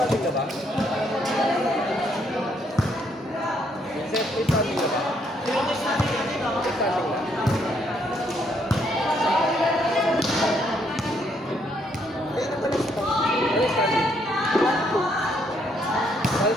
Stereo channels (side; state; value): both; normal; correlation 0.71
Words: ka ba? Vincent, may standing ka ba? May standing ka. Ano standing?